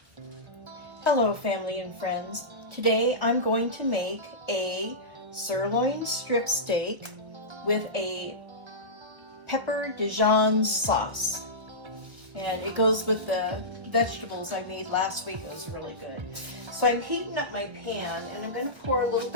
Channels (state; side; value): late; left; 1.2 ms